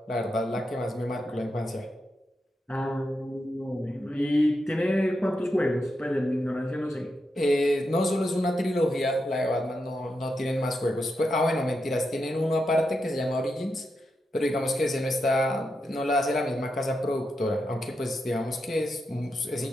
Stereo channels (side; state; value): both; normal; correlation 0.86